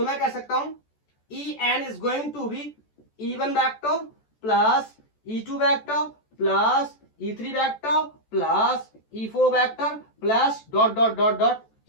मैं कह सकता हूं En is going to be E1 vector plus E2 vector plus E3 vector plus E4 vector plus dot dot dot dot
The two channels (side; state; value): right; late; 14 ms